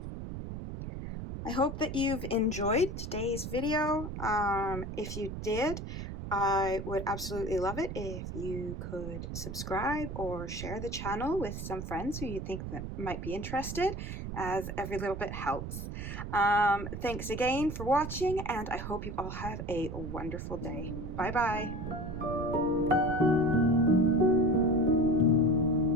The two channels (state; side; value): noise; right; rumble, 7 dB below the sound